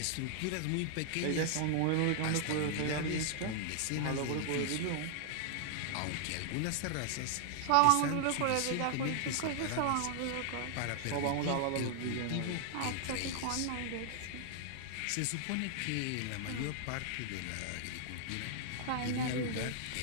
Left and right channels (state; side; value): different; both; correlation 0.00